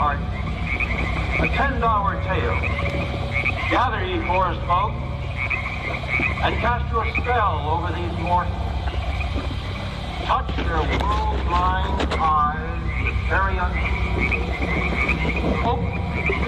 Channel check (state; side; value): identical; both; correlation 1.00